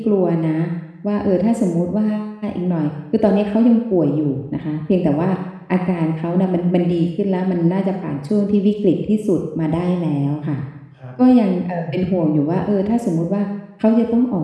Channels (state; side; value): identical; both; correlation 1.00